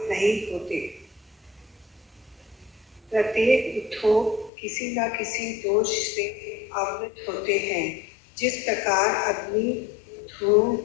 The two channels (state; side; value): drops out; right; at 4.5 s